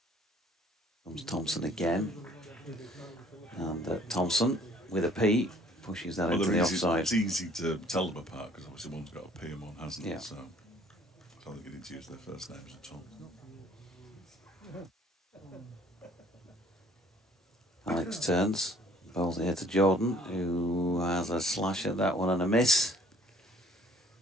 Comes Thompson again, and Thompson with a P pushes that into the offside. It's easy to tell them apart because obviously one's got a P and one hasn't. Yeah. So I don't think you need to use their first names at all. Alex turns, bowls here to Jordan, who has a slash at that one and a miss.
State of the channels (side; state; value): both; normal; correlation 0.57